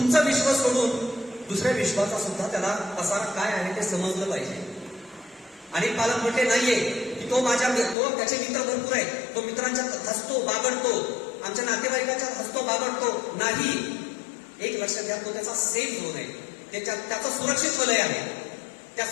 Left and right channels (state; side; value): drops out; right; at 8.0 s